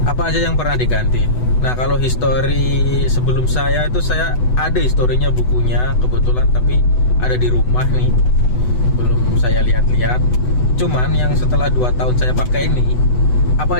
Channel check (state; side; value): late; right; 8.0 ms